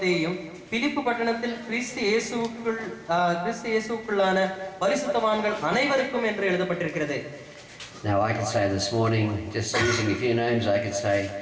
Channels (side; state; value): both; identical; correlation 1.00